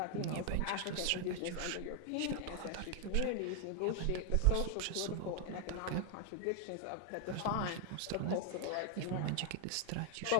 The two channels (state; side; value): different; both; correlation 0.00